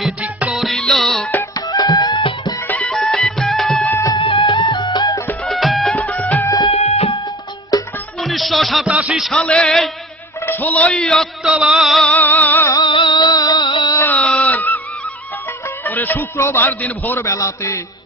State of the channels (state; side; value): normal; both; correlation 0.39